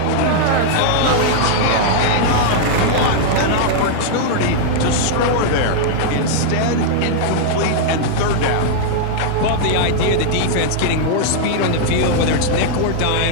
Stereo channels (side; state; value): both; different; correlation -0.01